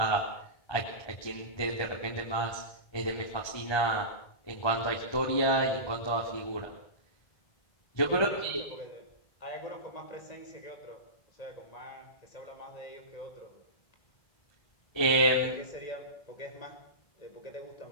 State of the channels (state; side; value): late; right; 1.2 ms